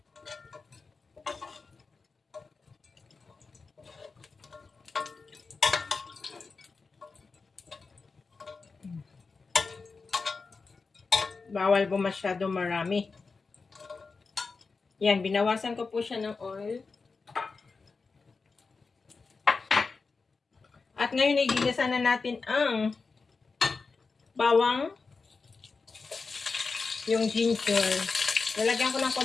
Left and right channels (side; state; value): right; quieter; 4.4 dB